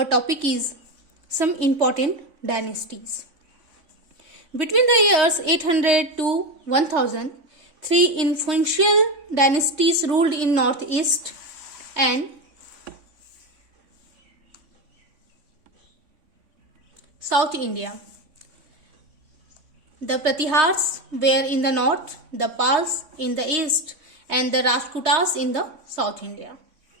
topic is some important dynasties. Between the years 800 to 1000, three influential dynasties ruled in northeast and South India. The Pratihars were in the north, the Pals in the east, and the Rajputas in the South India.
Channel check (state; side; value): late; left; 3.5 ms